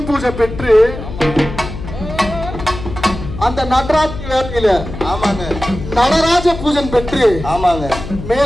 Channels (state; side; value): noise; left; hum, 10 dB below the sound